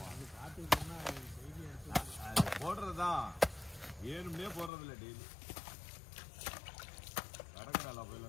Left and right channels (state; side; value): drops out; right; at 4.7 s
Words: போடுறதுதான் ஏழுமே போடுறது இல்லை. டெய்லி கடற்கரை